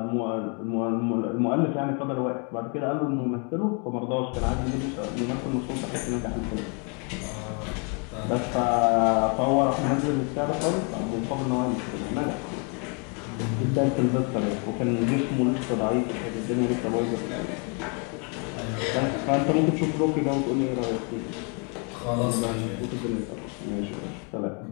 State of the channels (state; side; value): quieter; right; 36.6 dB